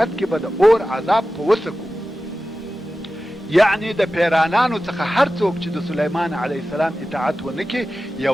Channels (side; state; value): both; normal; correlation 0.94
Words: کې به د اور عذاب په وسکو. یعنی د پیرانانو څخه هر څوک چې د سلیمان علیه السلام اطاعت ونه کړي،